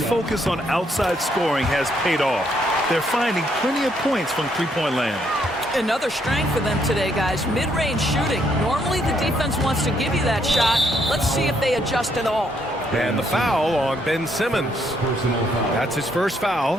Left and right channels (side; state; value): both; normal; correlation 0.72